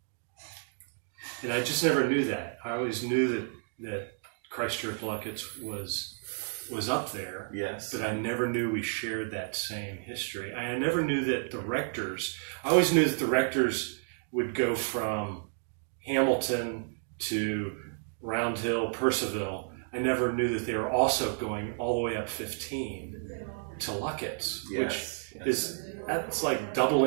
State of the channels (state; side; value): silent; left; 57 dB below the other